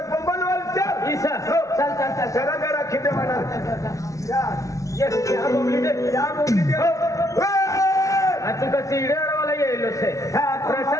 बोंबलवाल चल चल जरा जरा खिदे म्हणा या बोंबली दे तू का सीड्यावाला येलो से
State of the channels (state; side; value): late; right; 0.16 ms